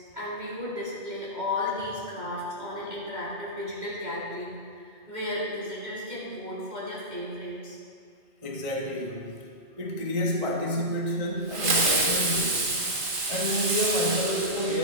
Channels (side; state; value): left; late; 2.4 ms